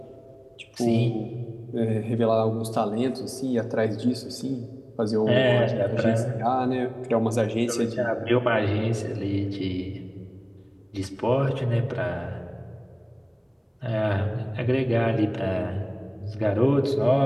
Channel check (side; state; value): both; identical; correlation 1.00